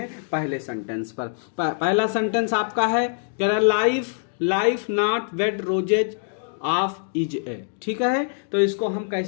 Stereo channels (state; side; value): silent; right; digital silence